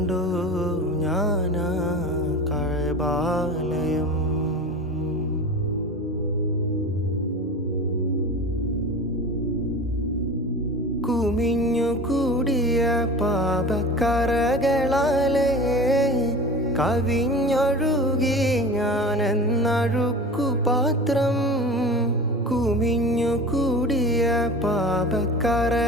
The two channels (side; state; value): both; normal; correlation 0.34